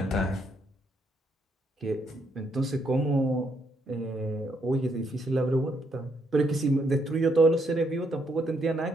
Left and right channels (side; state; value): both; normal; correlation 0.74